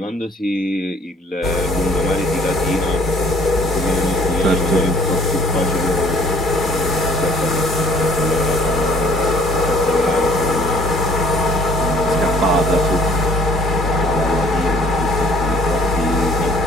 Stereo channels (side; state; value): both; normal; correlation 0.57